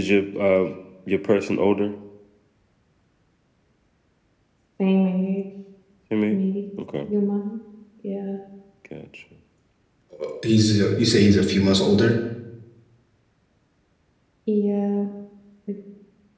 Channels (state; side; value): identical; both; correlation 1.00